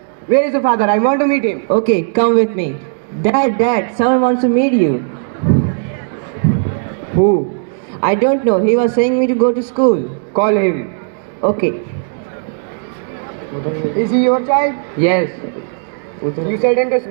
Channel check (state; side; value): silent; left; digital silence